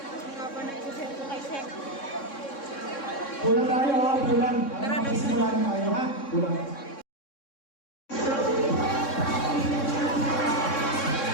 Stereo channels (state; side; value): late; right; 3.6 ms